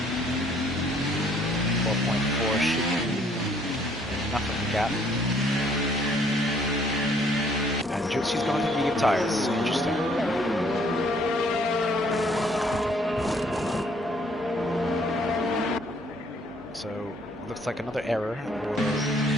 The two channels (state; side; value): normal; both; correlation 0.63